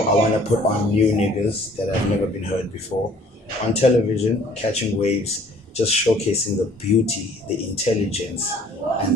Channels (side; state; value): both; normal; correlation 0.56